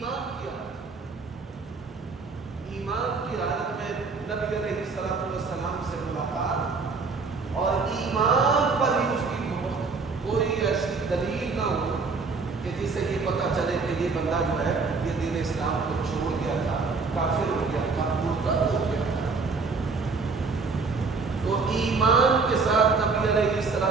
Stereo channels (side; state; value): left; quieter; 4.4 dB